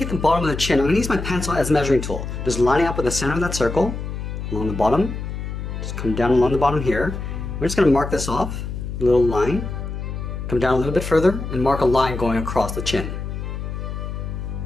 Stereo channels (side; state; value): left; noise; hum, 6 dB below the sound